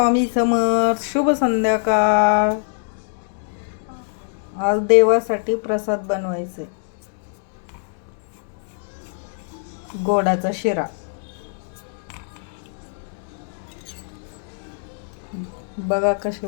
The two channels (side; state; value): right; silent; digital silence